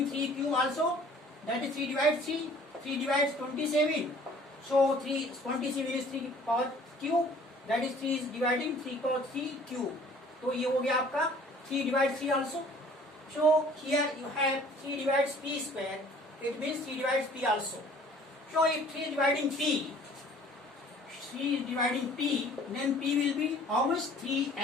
3q also. That is 3 divides 3. 3 divides 27. So 27 is 3 power q. That is 3 is dividing 3 power 3 q. तो ये हो गया आपका 3 divides 3 also. So here you have 3 divides p square. It means 3 divides p also. So if 3 is dividing p, then p will be how much?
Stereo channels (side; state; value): both; normal; correlation 0.52